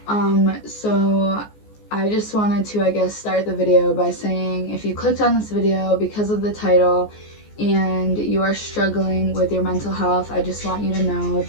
So I just wanted to, I guess, start the video by saying if you clicked on this video because of the title and you are struggling with your mental health, I just want you to know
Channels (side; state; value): right; late; 14 ms